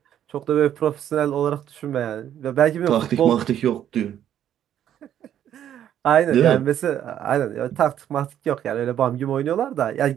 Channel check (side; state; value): left; quieter; 10.5 dB